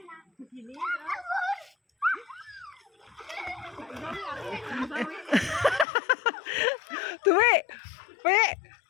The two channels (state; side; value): drops out; right; at 5.9 s